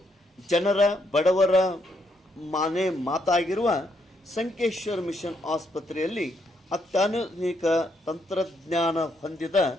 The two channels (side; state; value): both; normal; correlation 0.76